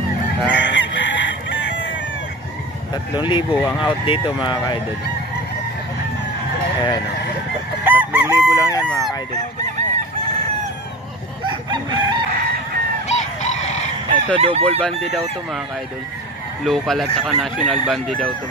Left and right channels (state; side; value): normal; both; correlation 0.34